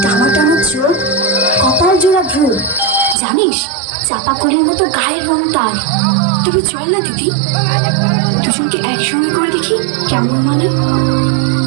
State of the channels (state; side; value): drops out; left; at 3.2 s